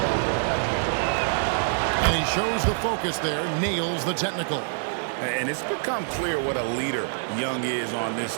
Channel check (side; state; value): left; silent; digital silence